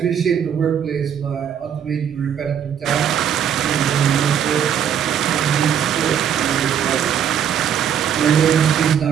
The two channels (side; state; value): left; quieter; 8.7 dB